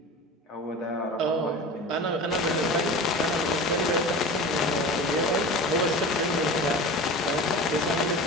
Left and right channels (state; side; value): normal; both; correlation 0.34